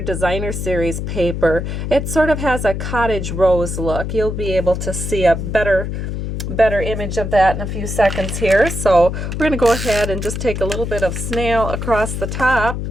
Series paper. It sort of has a cottage rose look. You'll be able to see a better image of that in a few seconds here. So we're going to go ahead and just take a little bit of snail across the top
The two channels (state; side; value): noise; left; hum, 4 dB below the sound